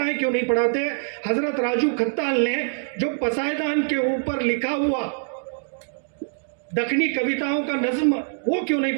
क्यों नहीं पढ़ाते? हजरत राजू खत्ताल ने जो पसायदान के ऊपर लिखा हुआ दखनी कविताओं का नज्म, वो क्यों नहीं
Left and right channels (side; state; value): left; silent; digital silence